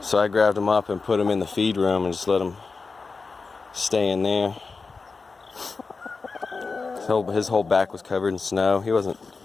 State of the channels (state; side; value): quieter; right; 4.4 dB